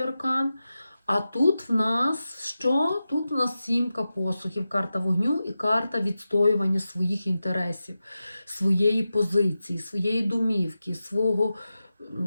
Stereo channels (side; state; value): both; inverted; correlation -0.92